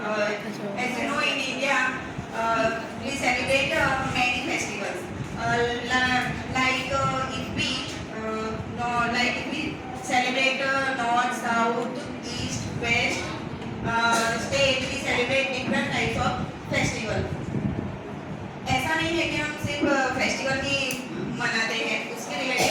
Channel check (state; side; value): identical; both; correlation 1.00